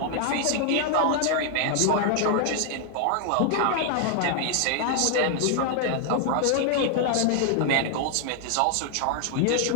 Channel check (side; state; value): both; different; correlation 0.00